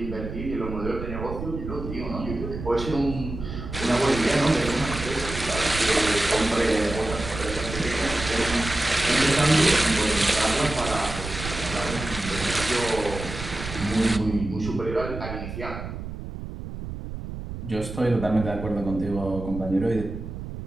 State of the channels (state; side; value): noise; right; rumble, 8 dB below the sound